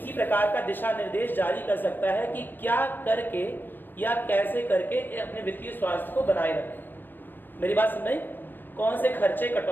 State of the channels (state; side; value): late; right; 0.094 ms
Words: प्रकार का दिशा निर्देश जारी कर सकता है कि क्या करके या कैसे करके अपने वित्तीय स्वास्थ्य को बनाए रखें। मेरी बात समझ में? कौन से खर्चे